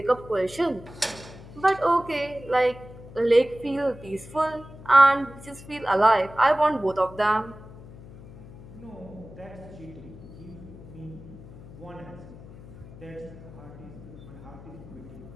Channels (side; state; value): left; noise; hum, 17 dB below the sound